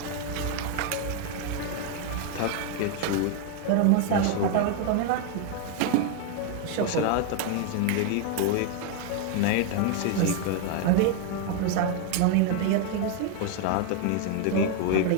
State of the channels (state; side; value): different; both; correlation 0.01